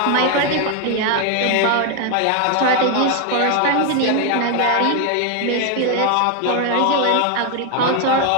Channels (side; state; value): both; different; correlation 0.01